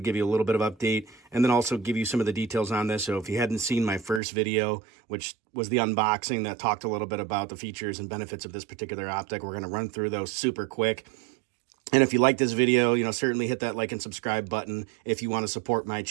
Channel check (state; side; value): drops out; left; at 4.2 s